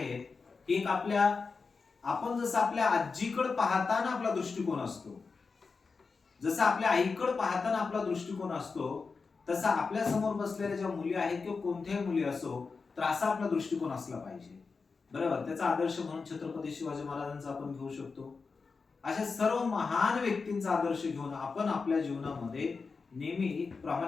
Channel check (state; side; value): quieter; right; 4.7 dB